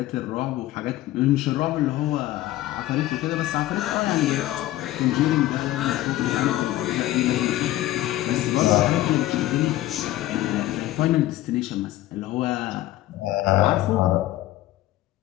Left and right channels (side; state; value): right; quieter; 15.4 dB